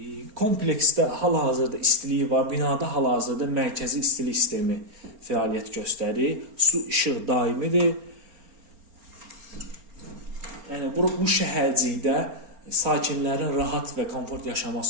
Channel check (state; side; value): late; left; 4.3 ms